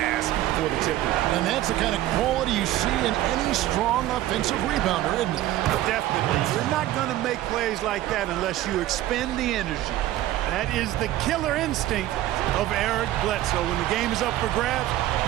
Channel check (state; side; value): quieter; left; 14.5 dB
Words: for the tipper. And that's the kind of quality you see in any strong offensive rebounder, isn't it? Definitely. You're not going to make plays like that unless you expend the energy. That is the killer instinct of Eric Bledsoe. When the game is up for grabs,